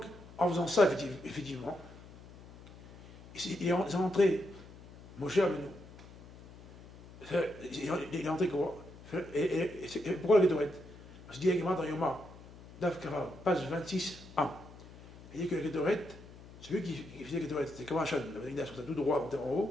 en faisant ça, effectivement, il est rentré, Moshe Rabbeinu. Il est rentré Korah. Et pourquoi la Ketoret? Parce qu'il dit également dans Yoma, Daf Kara, page 26a. Il dit que la Ketoret, celui qui faisait la Ketoret, c'était comme un chan, la Bénigdash, comme ça, tout droit, en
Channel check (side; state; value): left; noise; hum, 19 dB below the sound